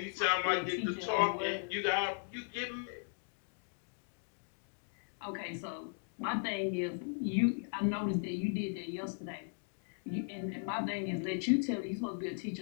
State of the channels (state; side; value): silent; right; 53 dB below the other